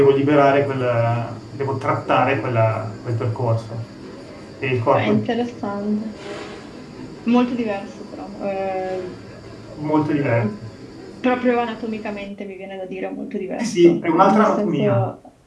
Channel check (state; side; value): identical; both; correlation 1.00